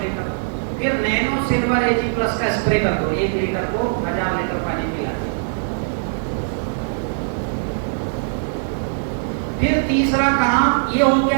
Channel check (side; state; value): left; silent; digital silence